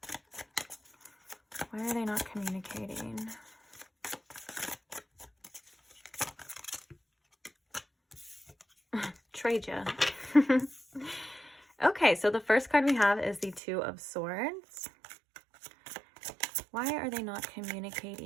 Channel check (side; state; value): left; drops out; at 13.6 s